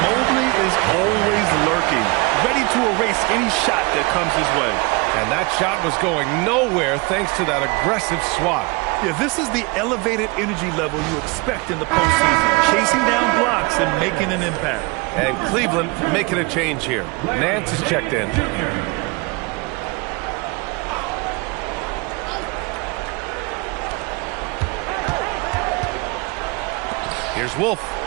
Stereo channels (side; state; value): left; quieter; 27.5 dB